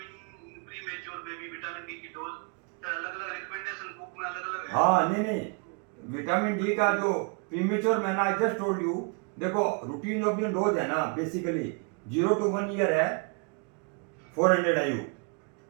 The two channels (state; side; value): quieter; left; 35.4 dB